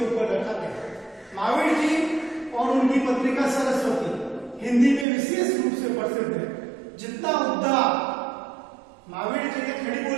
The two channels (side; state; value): left; drops out; at 5.1 s